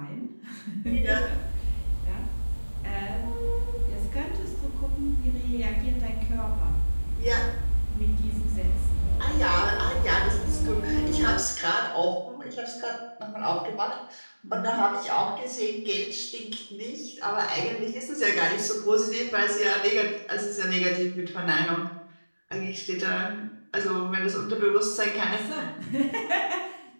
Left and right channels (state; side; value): inverted; both; correlation -1.00